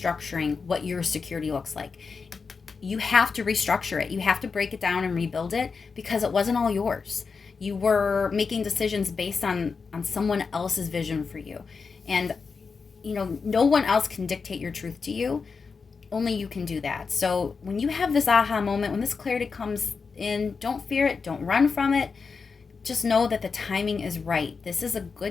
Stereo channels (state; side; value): quieter; right; 5.1 dB